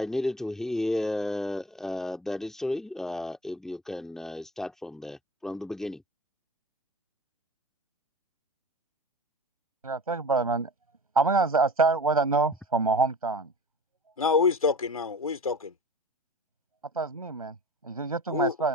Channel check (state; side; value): normal; both; correlation 0.36